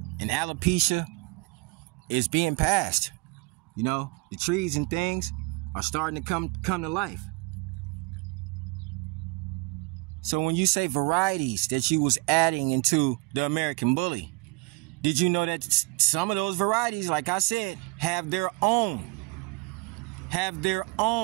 and alopecia is being passed. You know, the trees and things are starting to come to life. So when you say varieties that you was adding into the American Bully, did you know that some of those varieties, like I said, have their own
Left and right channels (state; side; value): quieter; left; 28.0 dB